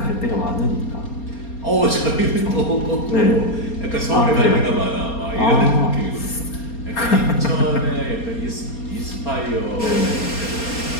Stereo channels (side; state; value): right; late; 4.3 ms